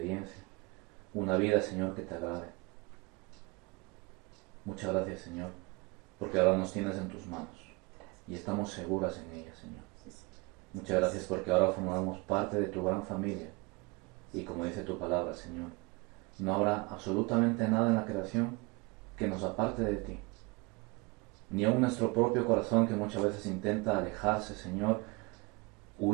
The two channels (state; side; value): quieter; left; 27.0 dB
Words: Una vida, Señor, que te agrade. Muchas gracias, Señor, porque ahora nos tienes en tus manos y estamos seguras en ellas, Señor. Muchas gracias porque ahora formamos parte de tu gran familia y como dice tu palabra, Señor, no habrá absolutamente nada en la creación que nos aparte de ti. Ni aun nuestro propio corazón que muchas veces intenta alejarse, Señor,